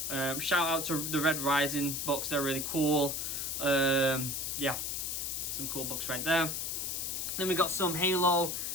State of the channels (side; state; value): left; noise; hiss, 2 dB below the sound